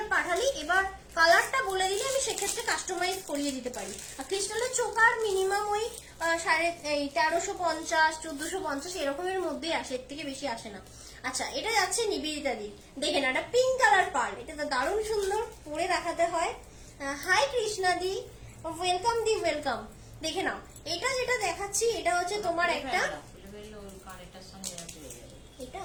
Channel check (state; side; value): identical; both; correlation 1.00